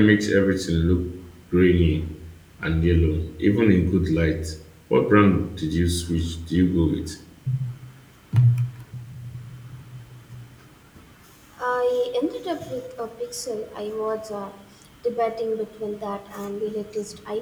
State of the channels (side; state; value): both; identical; correlation 1.00